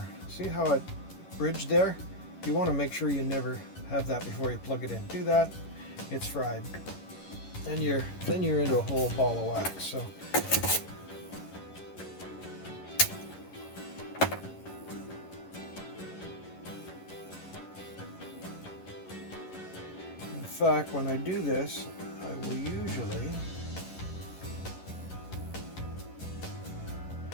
See how it bridged there? You want to make sure you never have that before you plug it in. Do that, it's fried. And then you're into a whole ball of wax. So in fact, when I do this, I will usually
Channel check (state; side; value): late; right; 11 ms